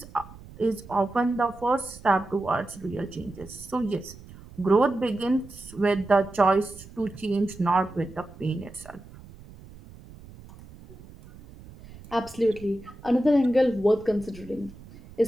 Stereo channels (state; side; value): noise; right; rumble, 19 dB below the sound